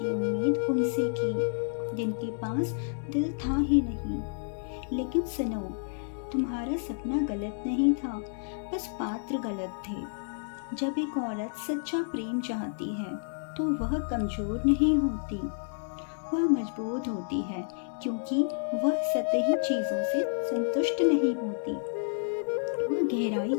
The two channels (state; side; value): silent; right; digital silence